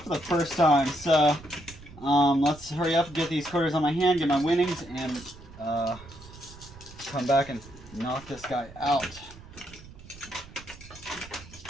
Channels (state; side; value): noise; right; rumble, 19 dB below the sound